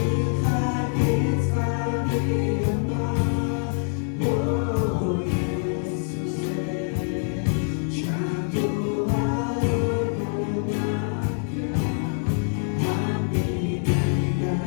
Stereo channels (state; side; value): silent; right; 57 dB below the other